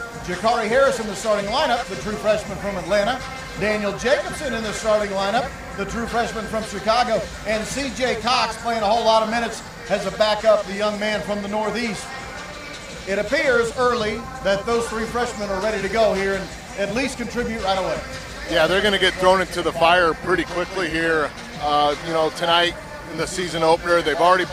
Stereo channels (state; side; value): identical; both; correlation 1.00